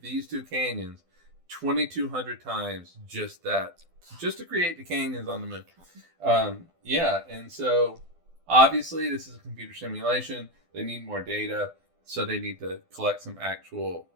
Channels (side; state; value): left; late; 12 ms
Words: these two canyons 2,200 times just to create the canyons on the moon. And so obviously this is a computer simulation. They need more data, so they need to collect some actual